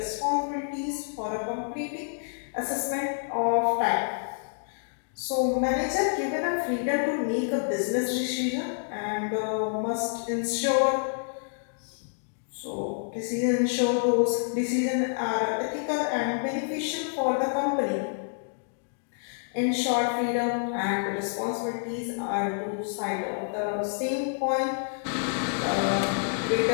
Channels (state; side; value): silent; right; digital silence